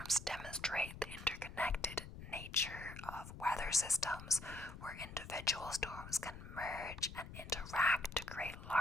demonstrate the interconnected nature of weather systems, where individual storms can merge and interact to create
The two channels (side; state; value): left; noise; rumble, 12 dB below the sound